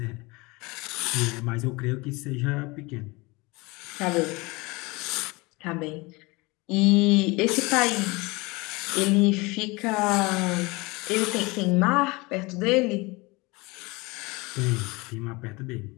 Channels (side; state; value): right; quieter; 24.6 dB